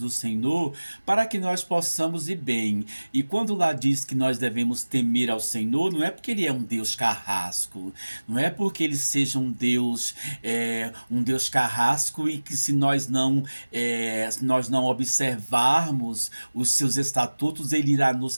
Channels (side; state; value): both; inverted; correlation -1.00